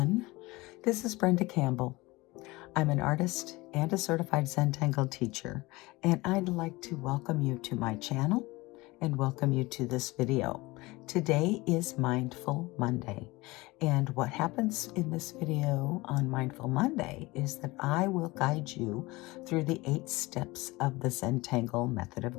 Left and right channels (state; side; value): quieter; right; 21.7 dB